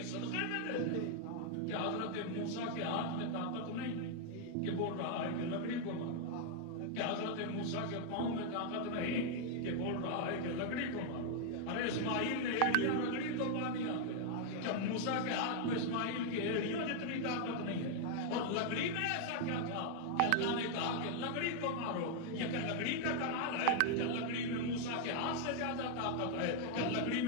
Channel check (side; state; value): both; different; correlation 0.00